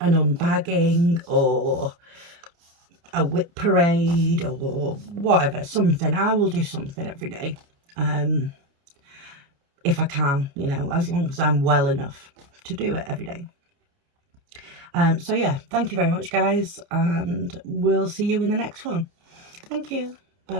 unbagging or a whip parade or whatever, something. I will do something every day, if I can, you know, as long as I'm well enough to do it every day. So yeah, thank you very much, guys, and we'll see you in the next one. Thank you. Bye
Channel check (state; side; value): late; left; 29 ms